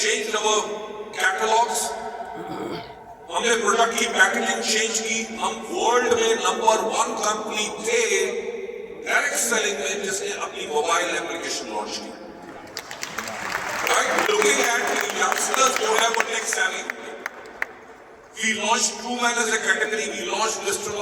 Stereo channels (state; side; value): identical; both; correlation 1.00